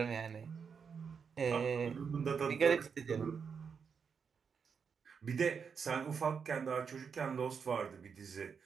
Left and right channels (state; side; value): quieter; left; 6.2 dB